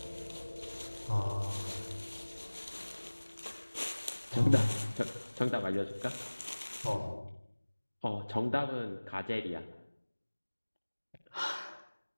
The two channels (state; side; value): inverted; both; correlation -1.00